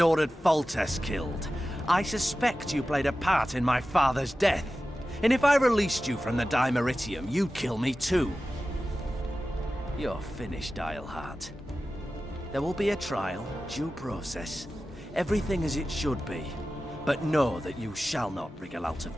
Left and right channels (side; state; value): both; normal; correlation 0.94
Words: Foltest killed. I suspect you played a part in my father's death. And if I released you from the Dimeritium, you'd kill me too. You're finished, Eilhart. There will be a trial, due process, everything as it should be. But know that you shall not wriggle out of